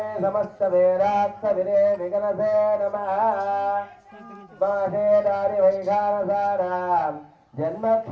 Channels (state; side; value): identical; both; correlation 1.00